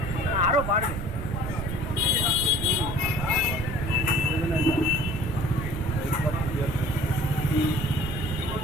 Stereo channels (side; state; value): right; noise; rumble, 5 dB below the sound